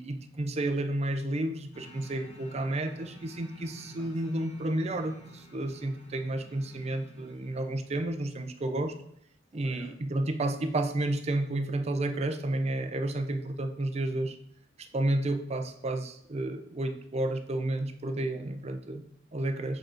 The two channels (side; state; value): both; normal; correlation 0.77